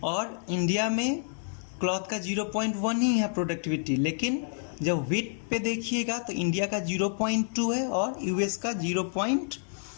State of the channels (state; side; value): silent; right; 59 dB below the other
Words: और इंडिया में क्लॉथ का 0.1 ही है प्रोडक्टिविटी। लेकिन जब व्हीट पे देखिएगा तो इंडिया का 0.2 है और यूएस का